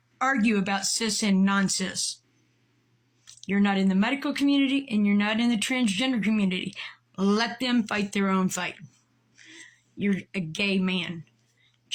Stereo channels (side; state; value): both; identical; correlation 1.00